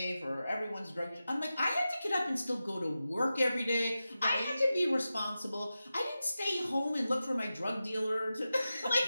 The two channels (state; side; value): inverted; both; correlation -0.93